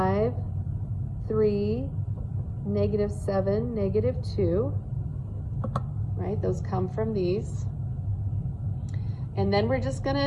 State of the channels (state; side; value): identical; both; correlation 1.00